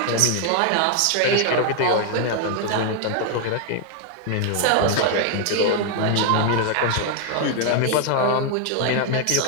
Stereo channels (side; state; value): both; different; correlation 0.00